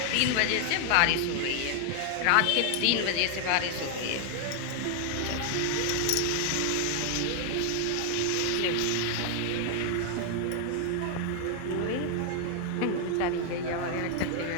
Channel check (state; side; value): different; both; correlation 0.00